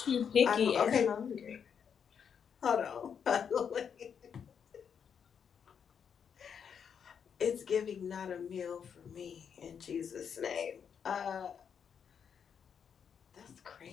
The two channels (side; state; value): right; quieter; 7.3 dB